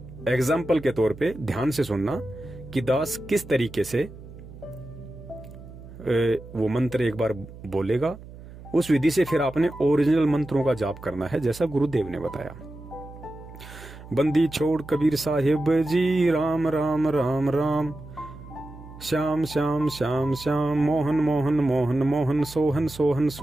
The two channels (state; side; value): noise; right; hum, 16 dB below the sound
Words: एग्जाम्पल के तौर पे ध्यान से सुनना कि दास किस तरीके से वो मंत्र एक बार बोलेगा, उस विधि से फिर आपने ओरिजिनल मंत्रों का जाप करना है जैसा गुरुदेव ने बताया। बंदी छोड़ कबीर साहिब जी, राम राम राम राम, श्याम श्याम श्याम श्याम, मोहन मोहन मोहन मोहन, सोहन सोहन